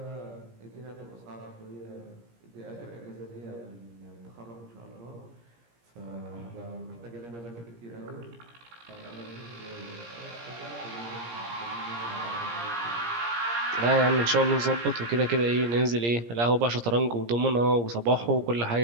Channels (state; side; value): late; left; 17 ms